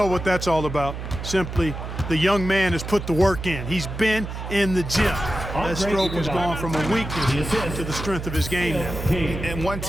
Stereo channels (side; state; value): right; noise; hum, 7 dB below the sound